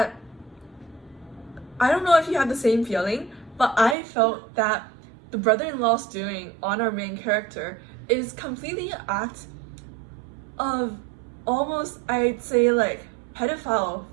I don't know if you had the same feeling, but I felt that the brother-in-law's doing on our main character is completely an act of almost, I'd say, like pedophile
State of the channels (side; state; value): left; drops out; at 4.0 s